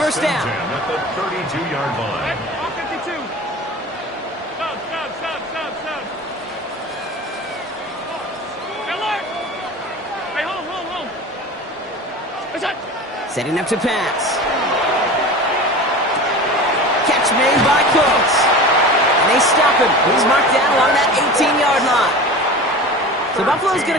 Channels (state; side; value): normal; both; correlation 0.34